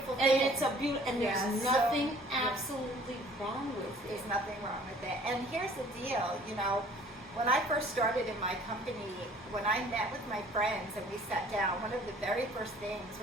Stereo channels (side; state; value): both; normal; correlation 0.53